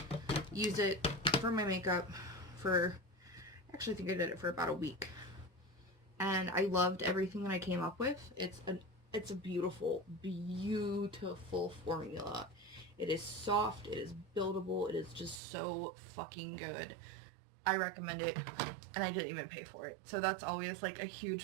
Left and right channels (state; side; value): drops out; left; at 15.4 s